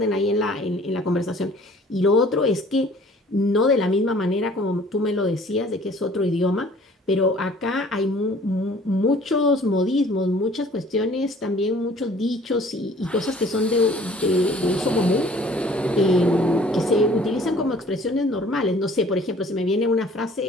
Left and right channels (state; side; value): normal; both; correlation 0.53